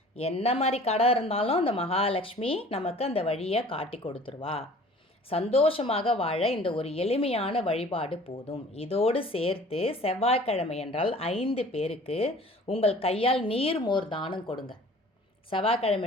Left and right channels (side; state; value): both; normal; correlation 0.48